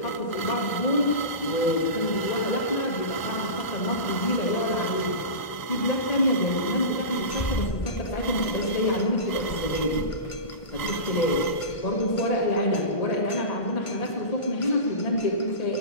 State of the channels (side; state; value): right; late; 1.0 ms